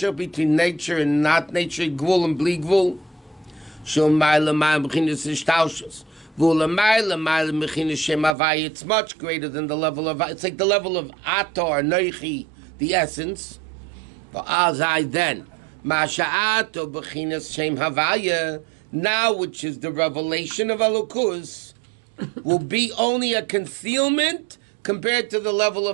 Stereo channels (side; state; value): left; drops out; at 8.3 s